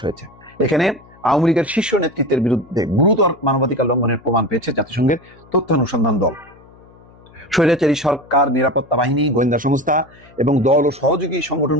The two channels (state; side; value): noise; left; hum, 26 dB below the sound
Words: হয়েছে। এখানে আওয়ামী লীগের শীর্ষ নেতৃত্বের বিরুদ্ধে গুরুতর মানবাধিকার লঙ্ঘনের প্রমাণ পেয়েছে জাতিসংঘের তথ্যানুসন্ধান দল। স্বৈরাচারী সরকার, নিরাপত্তা বাহিনী, গোয়েন্দা সংস্থা এবং দল ও সহযোগী